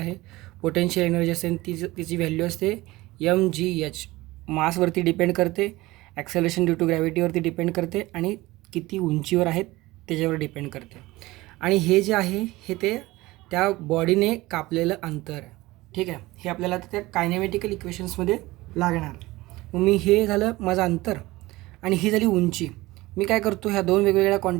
पोटेन्शियल एनर्जी असते, तिची व्हॅल्यू असते mgh. मासवरती डिपेंड करते, ॲक्सेलरेशन ड्यू टू ग्रॅव्हिटीवरती डिपेंड करते, आणि किती उंचीवर आहेत त्याच्यावर डिपेंड करते. आणि हे जे आहे हे ते त्या बॉडीने कापलेलं अंतर आहे. ठीक आहे. हे आपल्याला त्या कायनेमॅटिकल इक्वेशन्समध्ये लागणार. मग मी हे झालं माझं अंतर आणि ही झाली उंची. मी काय करतो, ह्या दोन वेगवेगळ्या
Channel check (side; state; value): left; quieter; 19.6 dB